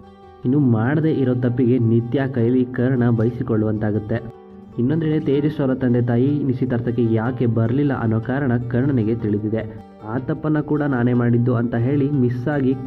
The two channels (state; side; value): identical; both; correlation 1.00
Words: ಇನ್ನು ಮಾಡದೇ ಇರೋ ತಪ್ಪಿಗೆ ನಿತ್ಯ ಕೈಲಿ ಕರ್ಣ ಬಯಸಿಕೊಳ್ಳುವಂತಾಗುತ್ತೆ. ಇನ್ನೊಂದೆಡೆ ತೇಜಸ್ ಅವರ ತಂದೆ ತಾಯಿ ನಿಶ್ಚಿತಾರ್ಥಕ್ಕೆ ಯಾಕೆ ಬರಲಿಲ್ಲ ಅನ್ನೋ ಕಾರಣ ಕರ್ಣನಿಗೆ ತಿಳಿದಿದೆ. ಆ ತಪ್ಪನ್ನು ಕೂಡ ನಾನೇ ಮಾಡಿದ್ದು ಅಂತ ಹೇಳಿ ಮಿಸ್ ಆಗಿ